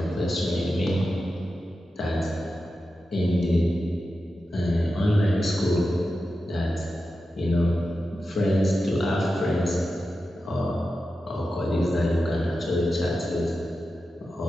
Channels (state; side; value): normal; both; correlation 0.91